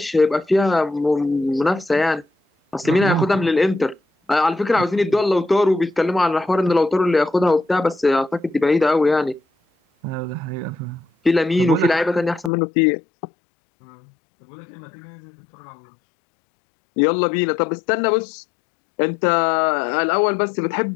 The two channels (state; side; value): drops out; right; at 12.5 s